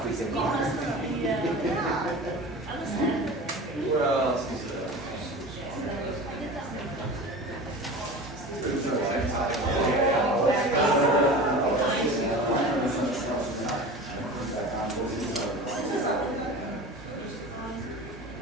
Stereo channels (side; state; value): both; normal; correlation 0.34